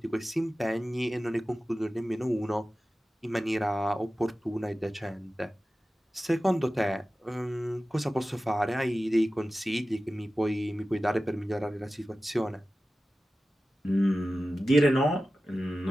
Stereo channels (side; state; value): both; normal; correlation 0.95